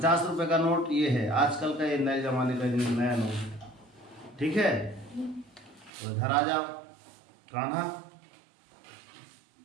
रुपए का नोट ये है, आजकल का ये नए जमाने का नया नोट। ठीक है, तो इधर आ जाओ कान्हा।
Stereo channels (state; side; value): drops out; left; at 5.9 s